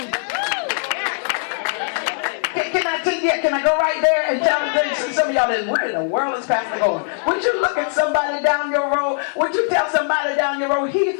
Can I go right there and tell some of y'all that where in the world is Pastor going? Would you look at somebody down your road? Would you tell somebody down your road, he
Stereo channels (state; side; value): silent; right; digital silence